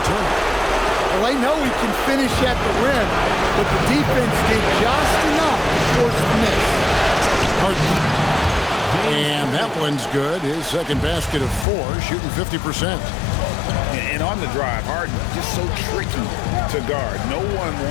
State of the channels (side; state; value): right; drops out; at 11.7 s